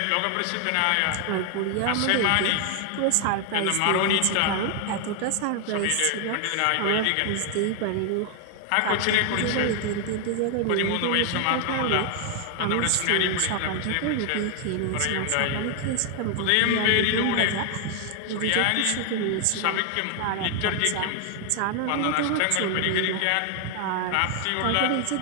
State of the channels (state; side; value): different; both; correlation 0.00